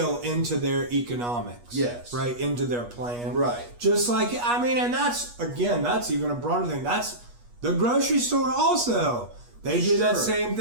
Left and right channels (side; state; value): left; late; 8.3 ms